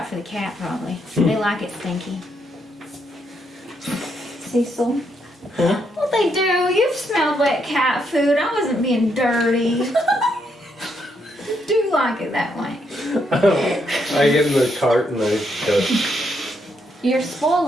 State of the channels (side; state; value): both; normal; correlation 0.77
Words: for the cat probably. They like it stinky. Cecil. Well, they do. You've smelled wet cat food. I wasn't being dirty. Do like it that way. I get in the cart and I go. You're